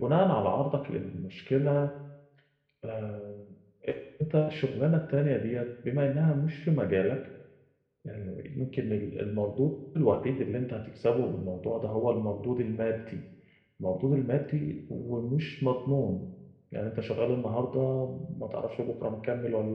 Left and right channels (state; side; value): identical; both; correlation 1.00